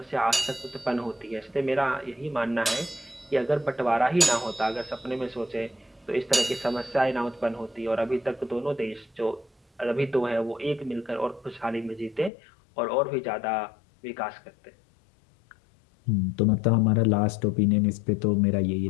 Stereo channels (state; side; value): drops out; right; at 12.3 s